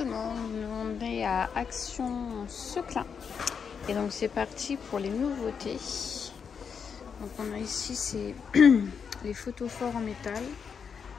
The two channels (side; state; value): right; quieter; 6.5 dB